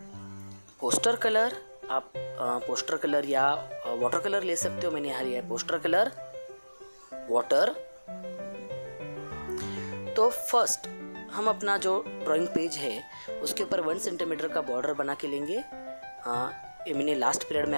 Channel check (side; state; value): both; inverted; correlation -1.00